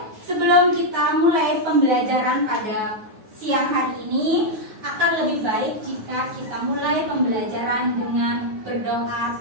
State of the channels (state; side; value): late; left; 9.4 ms